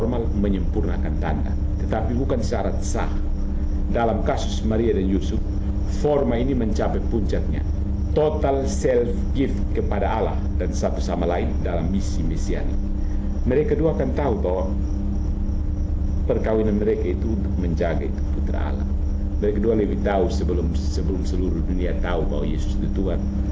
menyempurnakan tanda, tetapi bukan syarat sah. Dalam kasus Maria dan Yusuf, forma ini mencapai puncaknya, total self-gift kepada Allah dan satu sama lain dalam misi mesianik. Mereka kedua akan tahu bahwa perkawinan mereka itu untuk menjaga itu putra Allah. Mereka kedua lebih tahu sebelum seluruh dunia tahu bahwa Yesus itu Tuhan.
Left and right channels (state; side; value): identical; both; correlation 1.00